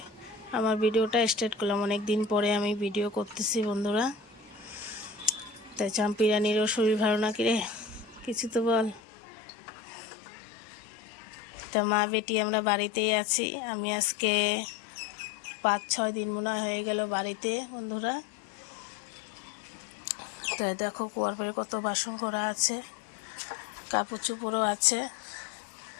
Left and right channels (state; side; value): drops out; right; at 9.0 s